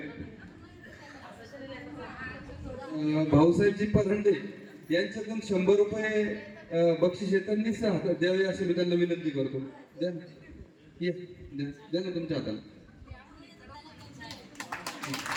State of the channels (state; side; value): identical; both; correlation 1.00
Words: भाऊसाहेबजी परंडे यांच्याकडून 100 रुपये बक्षीस त्यांनी द्यावे अशी मी त्यांना विनंती करतो. द्या द्या ना तुमच्या हाताला.